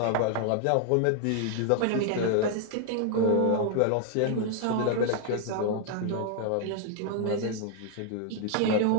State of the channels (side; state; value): both; different; correlation 0.00